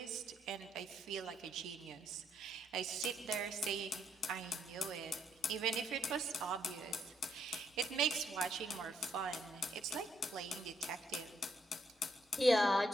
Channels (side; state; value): both; normal; correlation 0.74